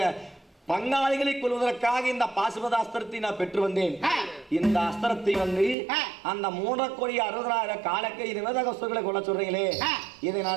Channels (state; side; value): drops out; left; at 5.8 s